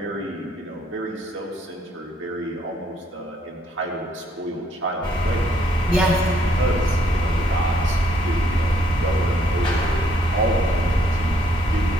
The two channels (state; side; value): normal; both; correlation 0.68